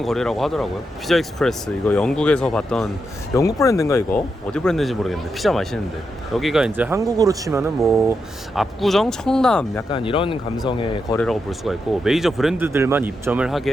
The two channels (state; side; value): normal; both; correlation 0.85